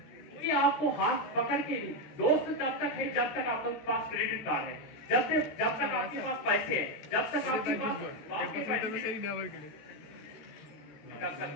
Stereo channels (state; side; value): late; right; 13 ms